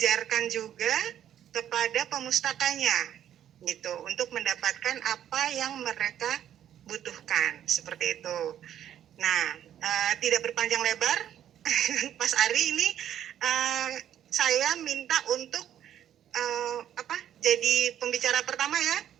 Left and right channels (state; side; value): quieter; left; 10.6 dB